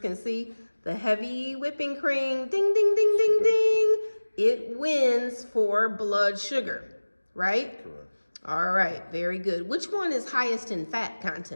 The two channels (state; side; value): inverted; both; correlation -1.00